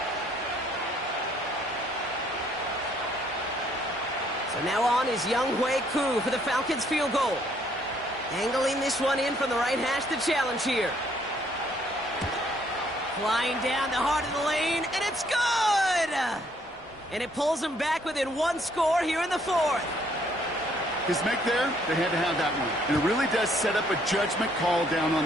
So now on is Younghoe Koo for the Falcons field goal. Angling this one in from the right hash to challenge here. Flying down the heart of the lane, and it's good! And it pulls them back within 1 score here in the 4th. His make there, they had to have that one. And it really does set up a judgment call down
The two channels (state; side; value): normal; both; correlation 0.66